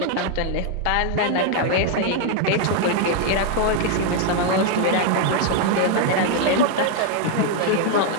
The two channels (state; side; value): different; both; correlation 0.00